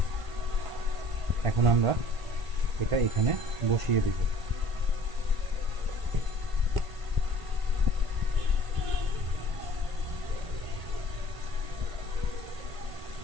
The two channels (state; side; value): late; left; 1.5 ms